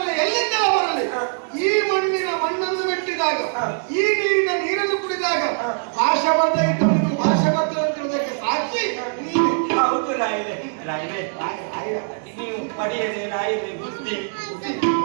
ಎಲ್ಲಿಂದ ಬರಲಿ ಈ ಮಣ್ಣಿನ ಮಣ್ಣನ್ನು ಮೆಟ್ಟಿದಾಗ ಈ ನೀರಿನ ನೀರನ್ನು ಕುಡಿದಾಗ ಭಾಷೆ ಬರ್ದ ಇಟ್ಟವನಿಗೂ ಭಾಷೆ ಬರ್ತದಂತಿರುವುದಕ್ಕೆ ಸಾಕ್ಷಿ ನೀನು ಹೌದು ರಾಯರೇ ರಾಯರೇ ನೀವು ಪಡೆಯದೆ ರಾಯರೇ ಬುದ್ಧಿ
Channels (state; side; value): silent; left; digital silence